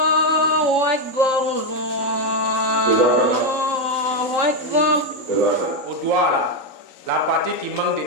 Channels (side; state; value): left; late; 3.9 ms